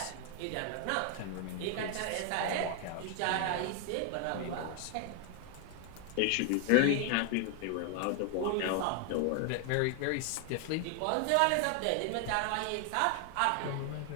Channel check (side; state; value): both; different; correlation 0.01